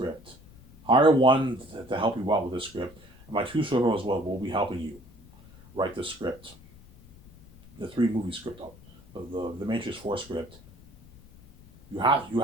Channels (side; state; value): left; noise; rumble, 23 dB below the sound